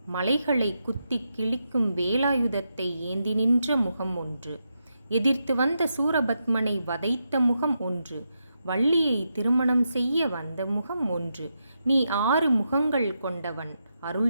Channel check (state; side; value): inverted; both; correlation -0.85